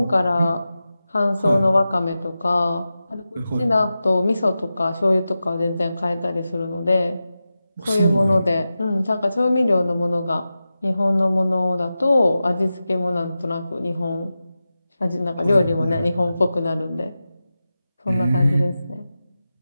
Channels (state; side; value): inverted; both; correlation -0.93